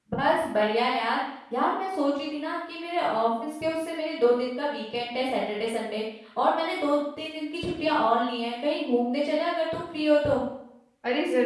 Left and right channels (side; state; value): both; identical; correlation 1.00